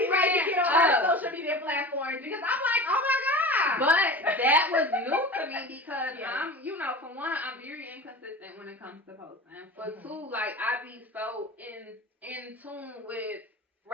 right to get on our social media platforms, because I'm like, oh my God. But that was new to me, because I'm, you know, for one, I'm very inconsistent when it comes to posting. For two, like, I be so in tune with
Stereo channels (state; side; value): normal; both; correlation 0.33